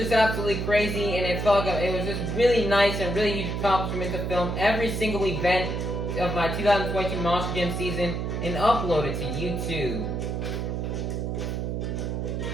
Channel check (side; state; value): right; noise; hum, 2 dB below the sound